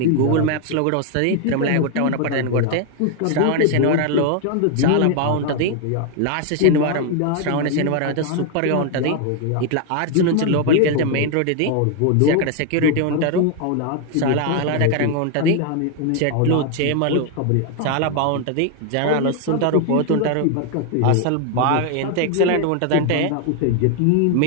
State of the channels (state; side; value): different; both; correlation 0.01